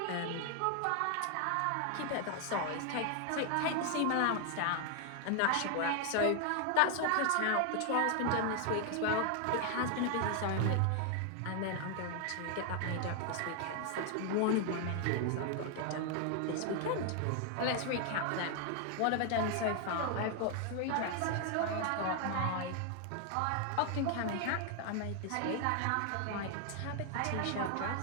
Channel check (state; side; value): different; both; correlation 0.00